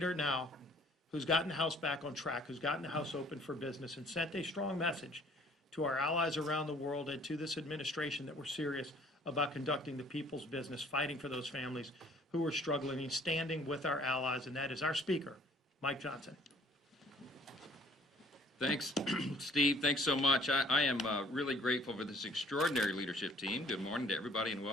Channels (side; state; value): both; normal; correlation 0.56